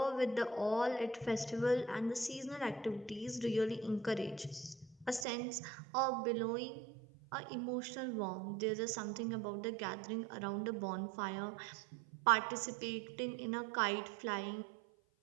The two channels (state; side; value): drops out; left; at 5.2 s